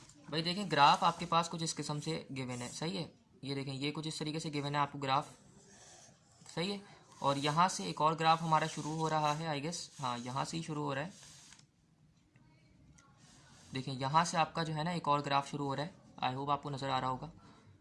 भाई, देखें ग्राफ आपके पास कुछ इस किस्म से गिवन है। सही है, ये देखें ये कुछ इस तरीके से गिवन है आपको ग्राफ। सही है, और यहाँ से एक और ग्राफ हमारा शुरू हो रहा है, आई गेस, हाँ यहाँ से ही शुरू हो रहा है। देखें यहाँ से आपका जो है ना एक और ग्राफ शुरू हो रहा है, आई होप आपको नज़र आ रहा होगा।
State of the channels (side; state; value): both; identical; correlation 1.00